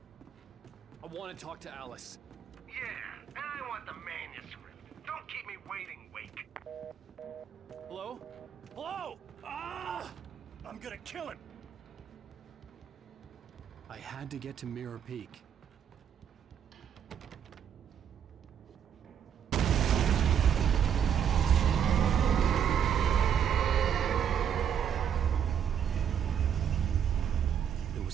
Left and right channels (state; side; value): quieter; left; 8.5 dB